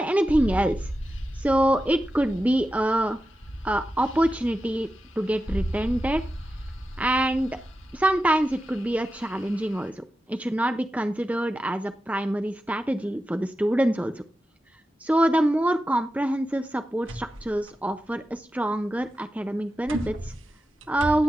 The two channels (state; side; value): normal; both; correlation 0.91